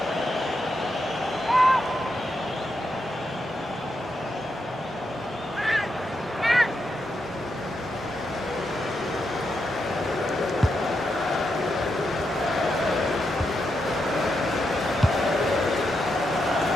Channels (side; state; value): both; normal; correlation 0.84